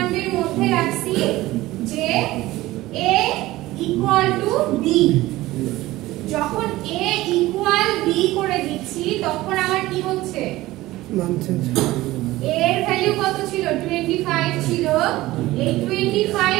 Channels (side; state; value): left; quieter; 17.7 dB